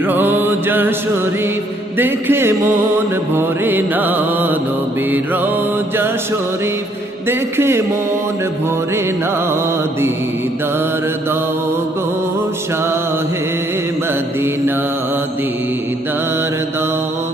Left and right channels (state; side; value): normal; both; correlation 0.67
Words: রওজা শরীফ দেখে মন ভরে না, নবীর রওজা শরীফ দেখে মন ভরে না। দিদার দাও গো শাহে মদিনা, দিদার দাও